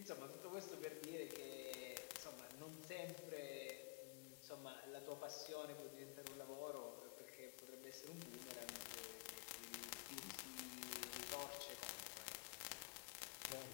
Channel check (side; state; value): right; quieter; 29.7 dB